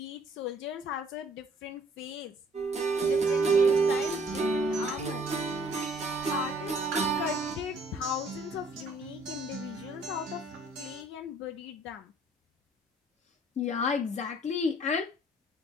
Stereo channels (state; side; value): normal; both; correlation 0.59